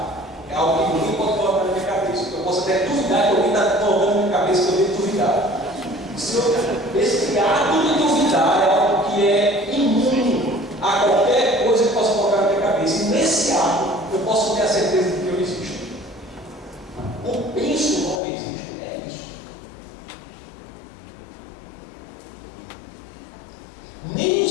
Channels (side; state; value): right; drops out; at 18.2 s